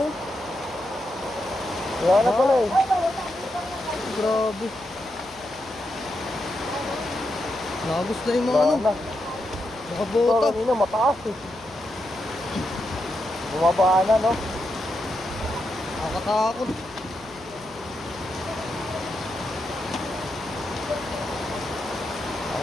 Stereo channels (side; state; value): left; noise; hum, 24 dB below the sound